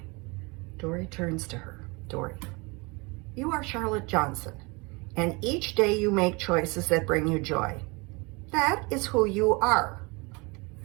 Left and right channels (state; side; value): quieter; left; 27.5 dB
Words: Dory turns to her. Dory, you are Charlotte Johnson, and each day you make choices that bring you joy. That is who you are.